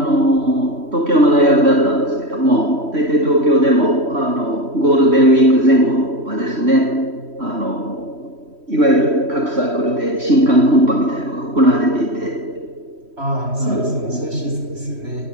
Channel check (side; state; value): left; late; 3.1 ms